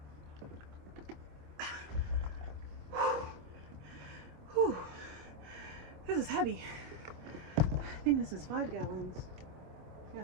This is heavy. I think this is 5 gallons. Yeah,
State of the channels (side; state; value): left; late; 25 ms